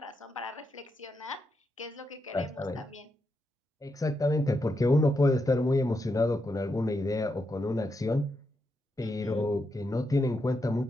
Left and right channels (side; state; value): both; normal; correlation 0.84